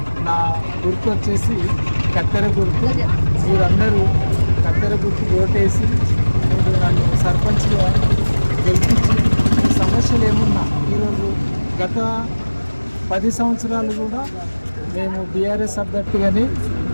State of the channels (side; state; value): both; inverted; correlation -1.00